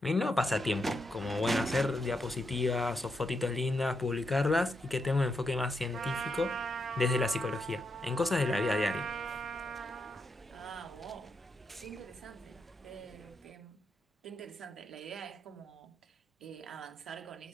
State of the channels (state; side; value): normal; both; correlation 0.82